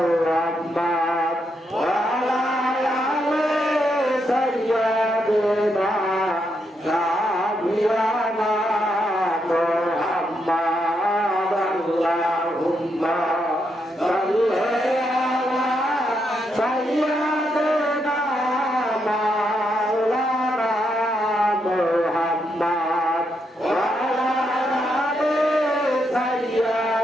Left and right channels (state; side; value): normal; both; correlation 0.80